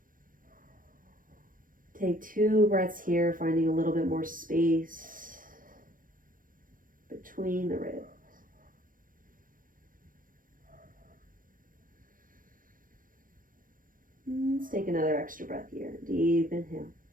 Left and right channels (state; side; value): late; left; 0.40 ms